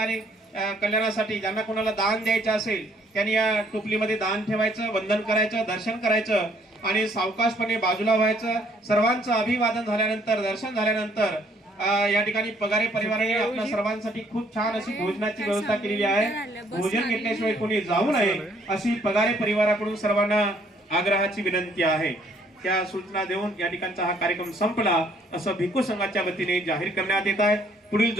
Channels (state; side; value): normal; both; correlation 0.64